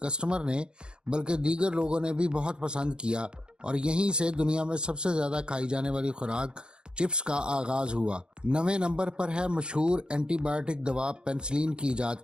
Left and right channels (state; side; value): late; left; 0.050 ms